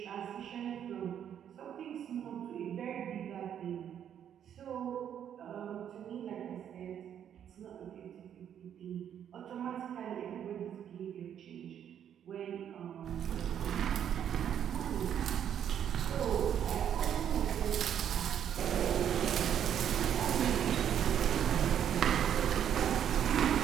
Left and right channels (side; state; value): left; quieter; 9.4 dB